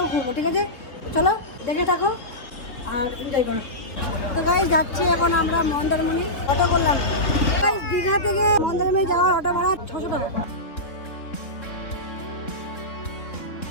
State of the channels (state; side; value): late; right; 3.7 ms